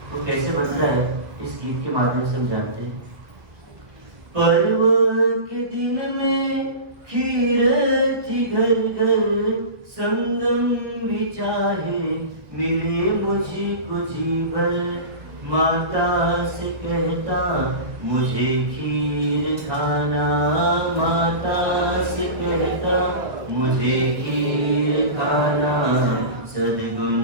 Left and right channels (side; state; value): left; late; 1.4 ms